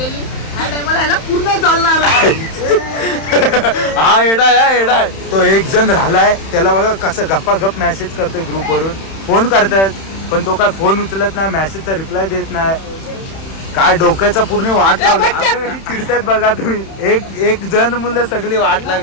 ह्या टायमाला ह्याला पूर्ण चालणार. हा एडा आहे, एडा आहे. तो एक जण राहिलाय, त्याला बघा कसं गप्पा गप मेसेज करतोय ग्रुपवरून. फोन करतायत पण तो काय फोन उचलत नाही, मेसेजचा रिप्लाय देत नाही. काय डोक्याचा पूर्ण वाट लागली. चिडतायत बघा तुम्ही. एक जण मुलं सगळी वाट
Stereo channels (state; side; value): late; right; 31 ms